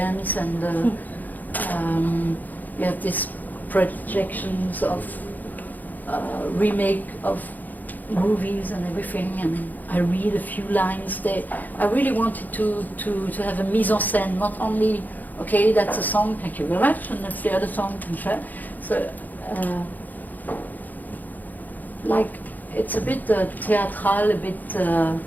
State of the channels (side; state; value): right; late; 0.083 ms